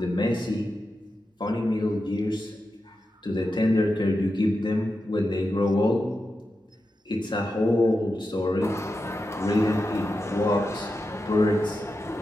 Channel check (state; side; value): normal; both; correlation 0.90